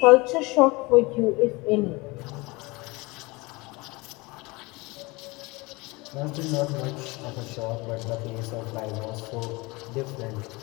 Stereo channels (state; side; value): quieter; right; 24.3 dB